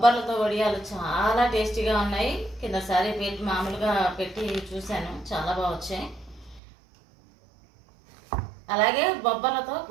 వడియాలు చాలా టేస్టీగా ఉన్నాయి. కిందసారి మామూలుగా పెట్టి చూశాను, చాలా బాగా వచ్చాయి. అలాగే బొబ్బర్లతో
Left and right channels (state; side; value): drops out; left; at 6.6 s